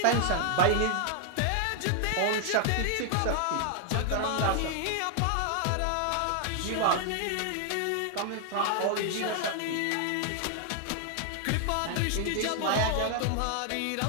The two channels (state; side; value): different; both; correlation 0.00